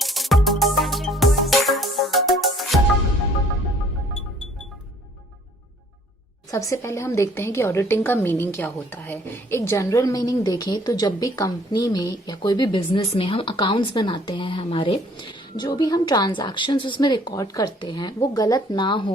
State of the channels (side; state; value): both; normal; correlation 0.58